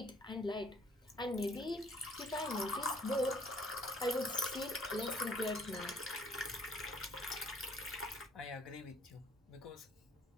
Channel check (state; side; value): normal; both; correlation 0.60